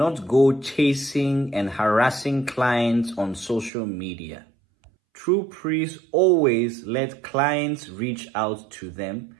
go chasing and harassing clients on social media. True priests always let clients reach out to them,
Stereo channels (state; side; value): drops out; left; at 3.7 s